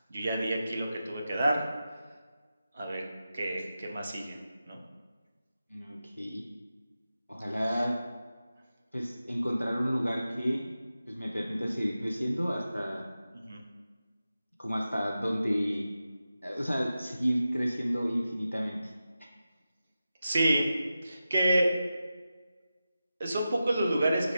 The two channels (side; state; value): both; inverted; correlation -0.92